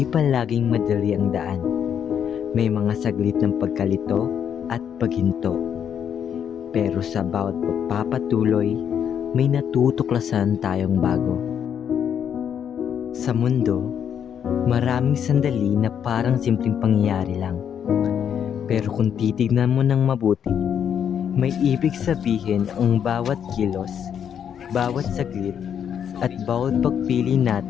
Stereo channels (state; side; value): quieter; right; 8.5 dB